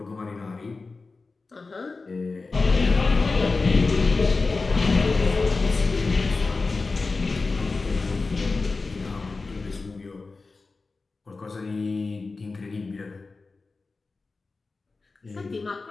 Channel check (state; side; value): quieter; right; 3.9 dB